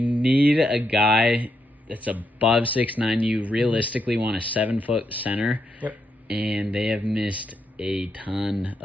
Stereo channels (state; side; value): normal; both; correlation 0.81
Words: a guy that's above 6'9". You realistically want a 7-foot center. Yep. And they have missed a ton